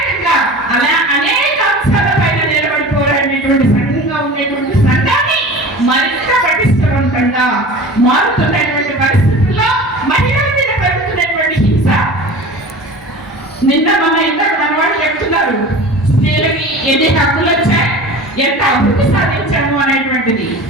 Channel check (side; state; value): both; normal; correlation 0.37